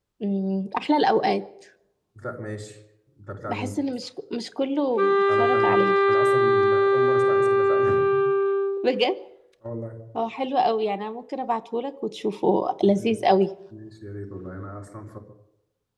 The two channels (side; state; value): both; identical; correlation 1.00